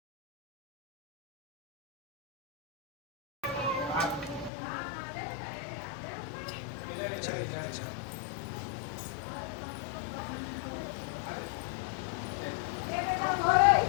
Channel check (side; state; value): right; drops out; at 4.5 s